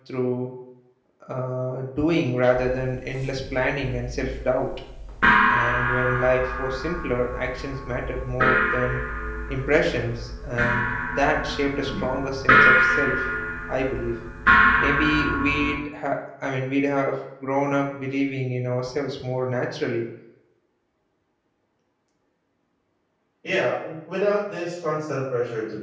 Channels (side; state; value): both; identical; correlation 1.00